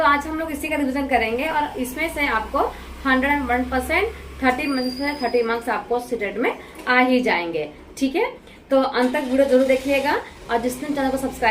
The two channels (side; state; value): both; identical; correlation 1.00